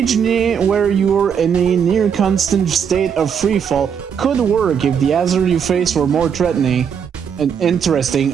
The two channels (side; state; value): left; quieter; 7.4 dB